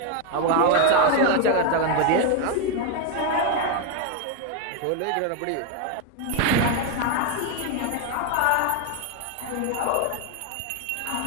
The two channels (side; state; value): both; different; correlation 0.01